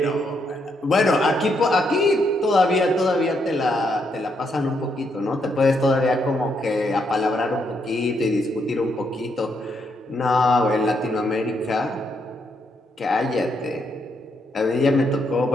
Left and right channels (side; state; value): both; normal; correlation 0.77